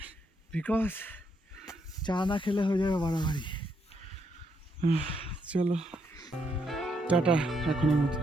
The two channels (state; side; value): normal; both; correlation 0.76